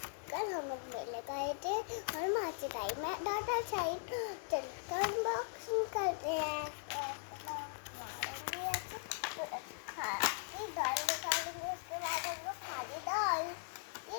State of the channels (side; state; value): right; silent; digital silence